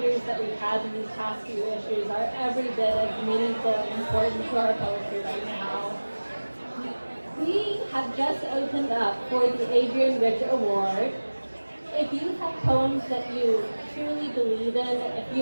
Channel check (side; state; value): both; inverted; correlation -1.00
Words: that we've had in these past few issues are every bit as meaningful and important to our poetry right now. We have just opened up for the Adrian Rich Award. If you have poems that you truly believe in, if